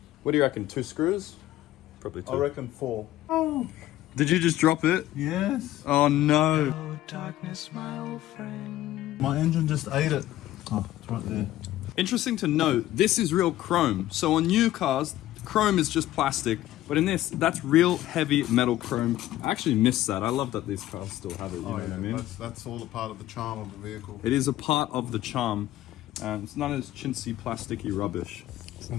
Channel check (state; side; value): quieter; right; 14.5 dB